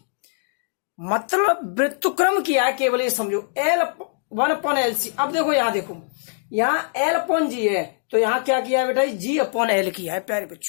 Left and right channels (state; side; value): silent; right; digital silence